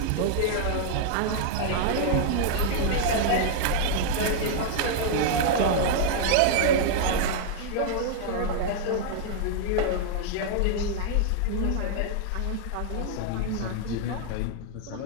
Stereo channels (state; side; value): different; both; correlation 0.00